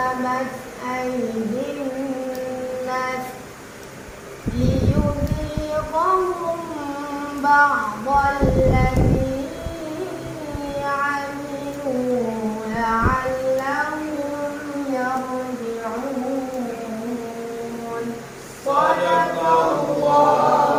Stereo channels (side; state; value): both; identical; correlation 1.00